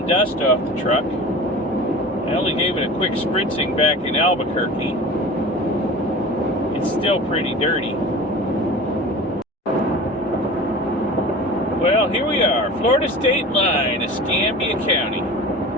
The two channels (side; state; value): both; normal; correlation 0.37